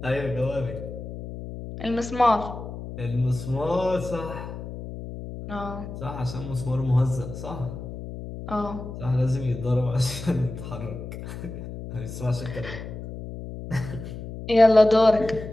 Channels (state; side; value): noise; left; hum, 10 dB below the sound